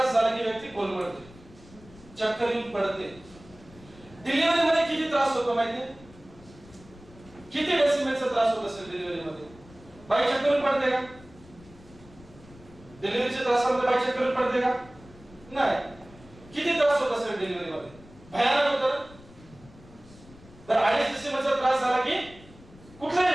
झाला की व्यक्ती कोलमडते, चक्कर येऊन पडते. डिलिव्हरी मध्ये किती त्रास होतो माहितीये? किती डेसिमलचा त्रास होत असेल डिलिव्हरी मध्ये? बाई चक्कर येऊन पडते का? डिलिव्हरीच्या त्रासामध्ये बाई चक्कर येऊन पडते का? नाही. किती त्रास होत असेल डिलिव्हरी मध्ये? भयानक होतं. तर 2.5 डेसिमलचा त्रास झाला की कुठलाही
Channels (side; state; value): left; noise; rumble, 22 dB below the sound